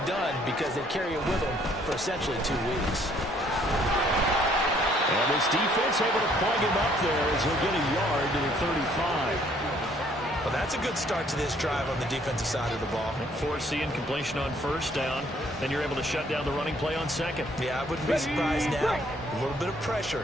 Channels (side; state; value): both; normal; correlation 0.63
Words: done because they carry it with them for essentially 2 weeks. And this defense able to plug him up there as he'll get a yard to the 35. Well, that's a good start to this drive on the defensive side of the ball. Force the incompletion on 1st down. Then you're able to shut down the running play on 2nd. Yeah, I wouldn't be surprised now. A little bit of